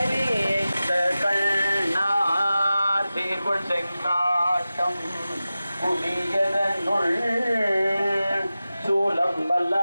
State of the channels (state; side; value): inverted; both; correlation -0.95